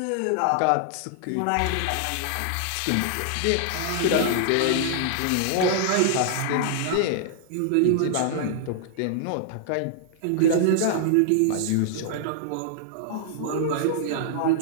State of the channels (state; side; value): different; both; correlation -0.01